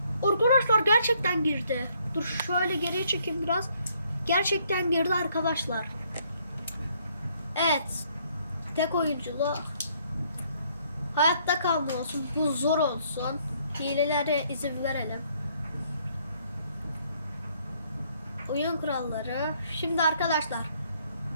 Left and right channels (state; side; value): inverted; both; correlation -0.67